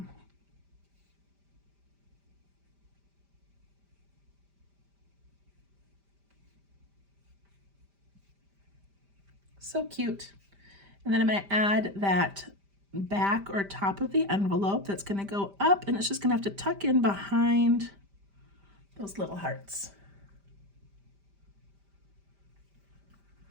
So cute. And then I'm going to add that back or top of the envelope that's going to go up, and it's just going to have to tuck in behind those little hearts.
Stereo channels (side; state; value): left; late; 5.1 ms